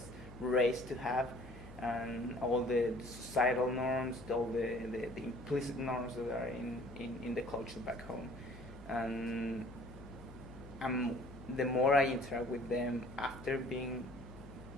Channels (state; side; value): noise; left; hum, 16 dB below the sound